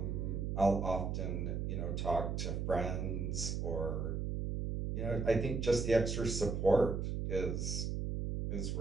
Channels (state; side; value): noise; right; hum, 1 dB below the sound